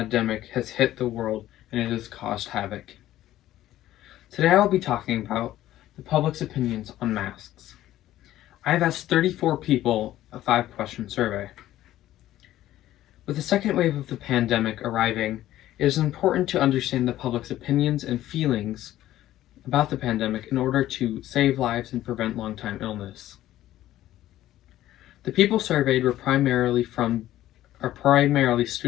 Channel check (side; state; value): right; quieter; 13.9 dB